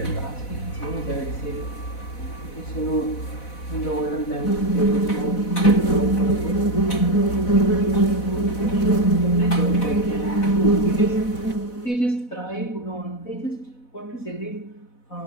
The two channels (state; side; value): late; right; 4.1 ms